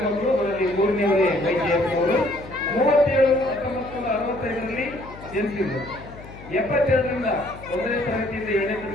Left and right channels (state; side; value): noise; left; hum, 17 dB below the sound